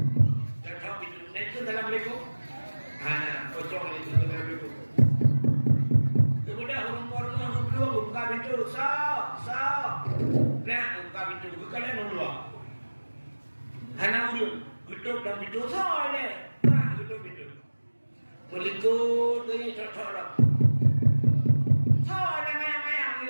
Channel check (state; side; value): inverted; both; correlation -1.00